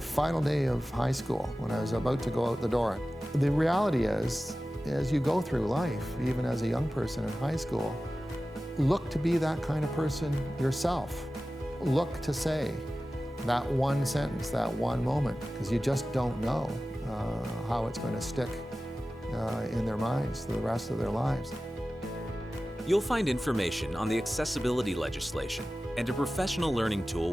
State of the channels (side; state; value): both; normal; correlation 0.95